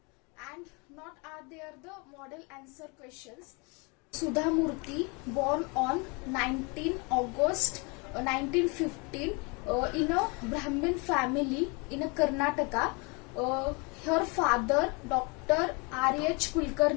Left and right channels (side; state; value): right; quieter; 30.5 dB